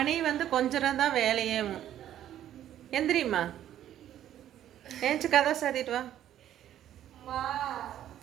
வந்து கொஞ்சம் தான் வேலையேவும். எந்திரிம்மா, ஏஞ்சி கதை சாத்திட்டு வா.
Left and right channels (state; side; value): quieter; left; 11.5 dB